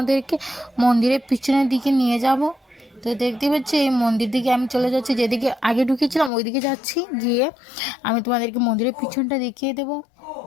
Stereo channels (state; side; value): drops out; right; at 6.3 s